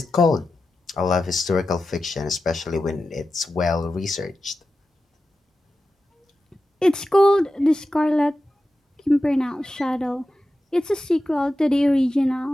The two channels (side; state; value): both; normal; correlation 0.92